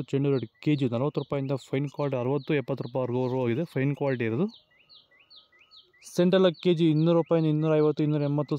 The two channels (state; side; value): identical; both; correlation 1.00